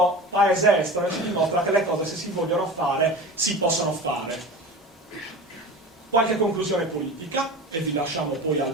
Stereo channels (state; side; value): normal; both; correlation 0.33